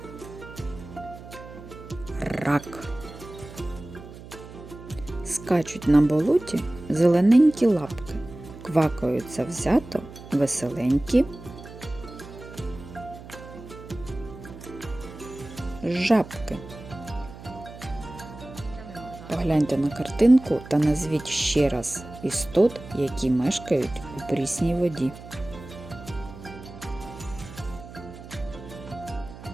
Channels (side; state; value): right; noise; hum, 15 dB below the sound